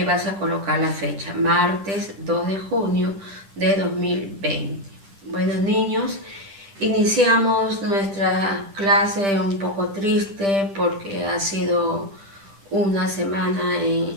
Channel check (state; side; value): late; left; 10 ms